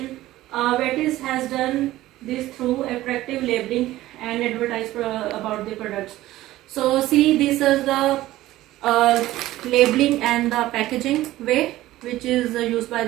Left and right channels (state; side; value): quieter; left; 15.9 dB